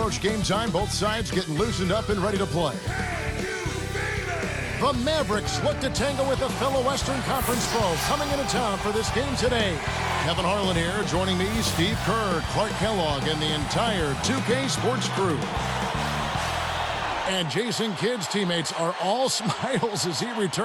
game time, both sides getting loosened up and ready to play. The Mavericks look to tangle with a fellow Western Conference foe coming into town for this game today. Kevin Harlan here, joining me, Steve Kerr, Clark Kellogg, and the entire 2K Sports crew. And Jason Kidd's teammates are all smiles as he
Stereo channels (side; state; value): both; identical; correlation 1.00